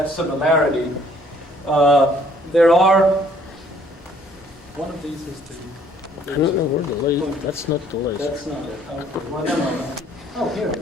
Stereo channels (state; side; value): normal; both; correlation 0.61